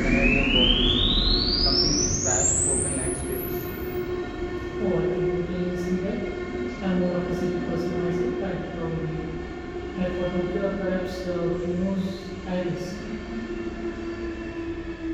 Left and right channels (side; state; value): both; identical; correlation 1.00